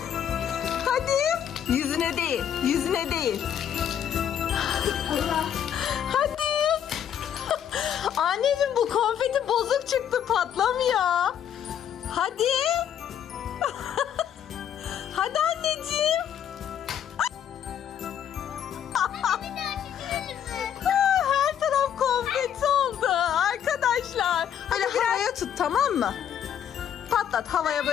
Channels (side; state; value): right; quieter; 9.4 dB